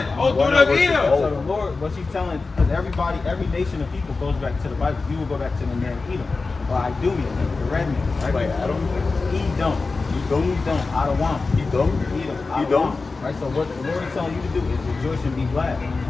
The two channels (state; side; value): quieter; right; 4.0 dB